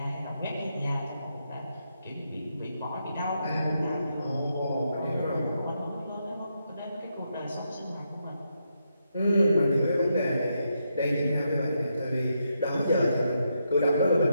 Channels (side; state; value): both; inverted; correlation -0.81